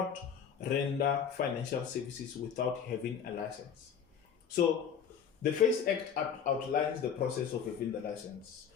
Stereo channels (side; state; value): right; quieter; 7.6 dB